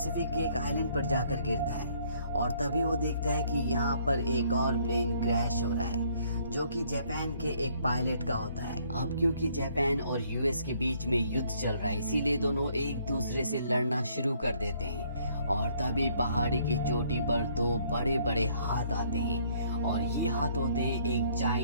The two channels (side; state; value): both; inverted; correlation -0.64